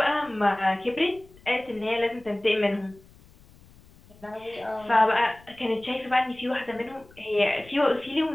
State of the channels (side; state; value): left; noise; rumble, 26 dB below the sound